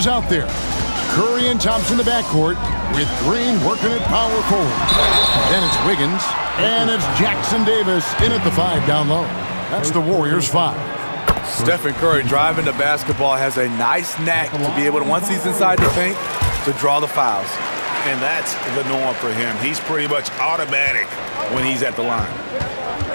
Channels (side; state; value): both; inverted; correlation -1.00